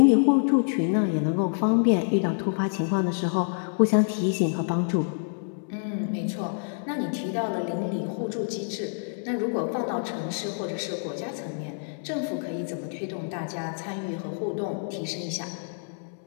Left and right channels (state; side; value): silent; right; 60 dB below the other